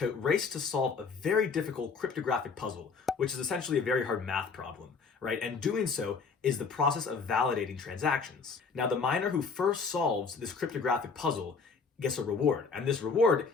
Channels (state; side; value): quieter; right; 5.0 dB